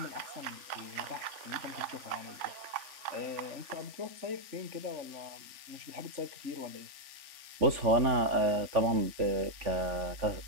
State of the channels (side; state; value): left; late; 3.5 ms